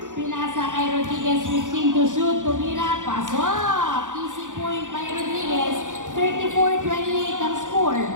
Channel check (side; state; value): left; late; 0.87 ms